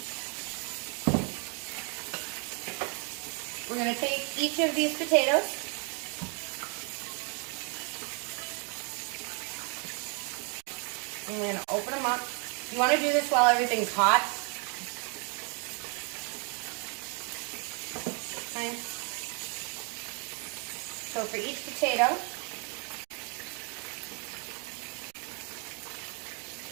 We're going to take each of these potatoes. And we're going to open them up. You want to do this while everything's hot. Okay. So for each potato,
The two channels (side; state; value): left; quieter; 36.5 dB